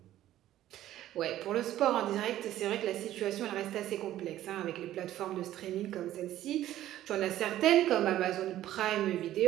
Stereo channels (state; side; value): quieter; left; 13.3 dB